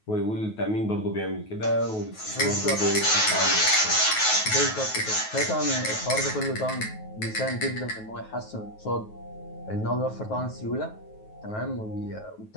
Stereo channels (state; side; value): late; right; 9.3 ms